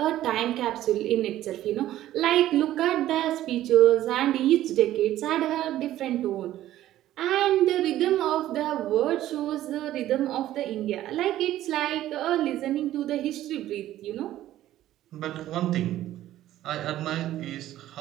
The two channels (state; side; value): quieter; left; 13.6 dB